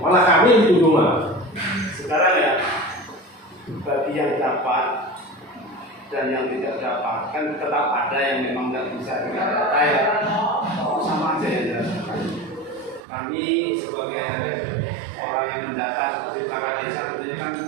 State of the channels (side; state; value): left; drops out; at 13.0 s